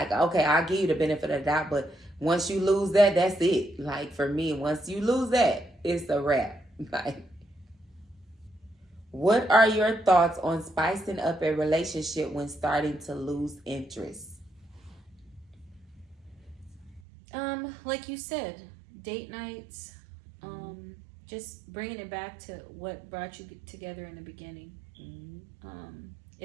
okay, I'll give you the benefit of the doubt, but once you lose that, that's it. Like, for me, once you lose that, it's a wrap. Like, what are your thoughts on spicing up a relationship when starting to lose interest? Like you said, date nights, just bringing it back to what brought you together in the beginning. Mm-hmm.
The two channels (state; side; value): drops out; left; at 17.0 s